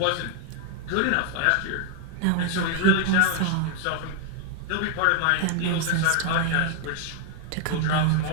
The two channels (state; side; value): different; both; correlation 0.00